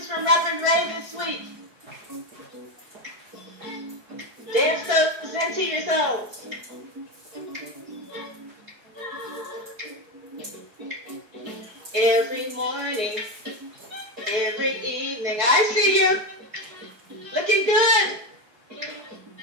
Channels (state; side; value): late; left; 4.8 ms